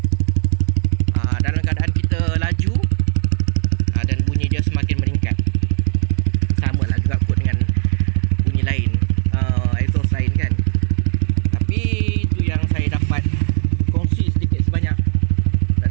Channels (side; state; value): left; silent; 55 dB below the other